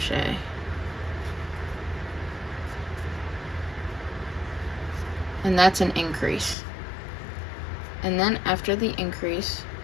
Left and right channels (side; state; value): right; drops out; at 6.6 s